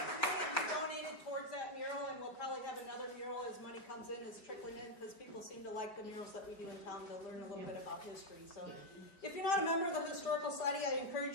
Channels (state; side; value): late; right; 4.8 ms